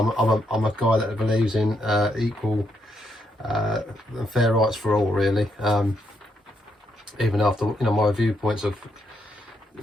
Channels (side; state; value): both; normal; correlation 0.78